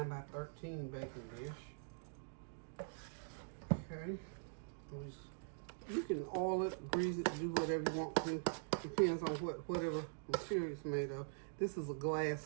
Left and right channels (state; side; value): silent; left; digital silence